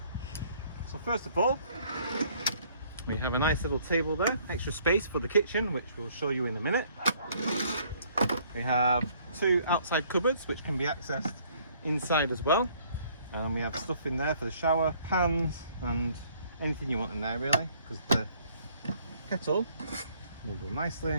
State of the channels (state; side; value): inverted; both; correlation -0.62